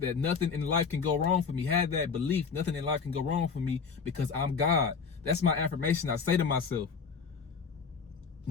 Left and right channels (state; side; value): quieter; right; 5.6 dB